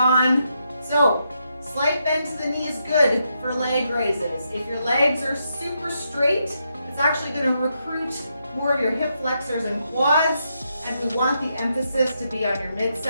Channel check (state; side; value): inverted; both; correlation -0.81